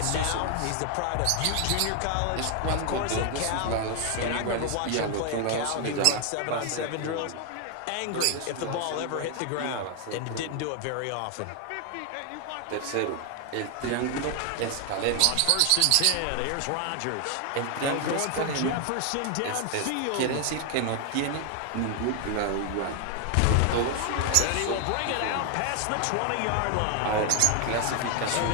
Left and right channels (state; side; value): different; both; correlation 0.00